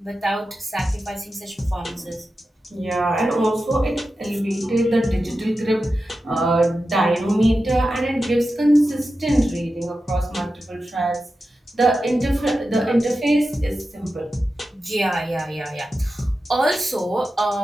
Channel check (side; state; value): both; normal; correlation 0.92